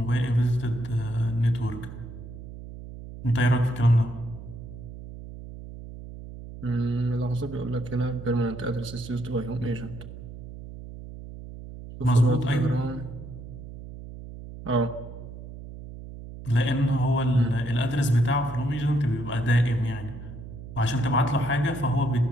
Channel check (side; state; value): right; noise; hum, 13 dB below the sound